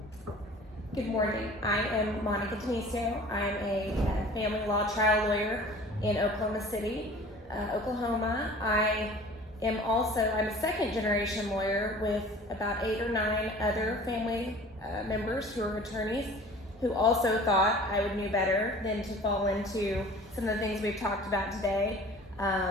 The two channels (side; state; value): both; normal; correlation 0.45